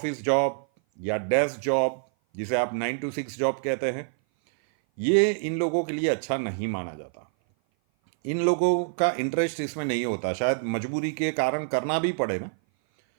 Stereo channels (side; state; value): left; silent; 57 dB below the other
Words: जॉब या डेस्क जॉब, जिसे आप 9 to 6 जॉब कहते हैं, ये इन लोगों के लिए अच्छा नहीं माना जाता। इन लोगों का इंटरेस्ट इसमें नहीं होता, शायद मजबूरी के कारण करना भी पड़े ना,